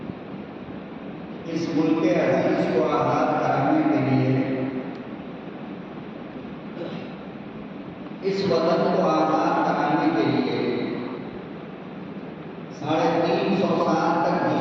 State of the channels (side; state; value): both; identical; correlation 1.00